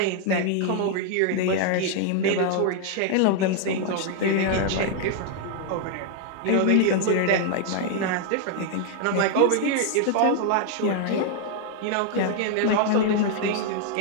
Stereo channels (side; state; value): both; different; correlation 0.00